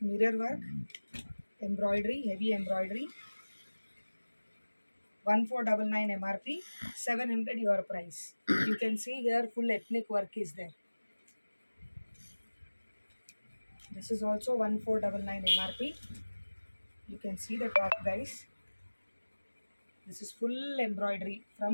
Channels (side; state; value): both; inverted; correlation -1.00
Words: work. Embroidery, heavy embroidery. 1499 MRP. 700 your price. You can see here full ethnic work is there. This is also 1499 MRP. You can see the top, guys. This is full embroidery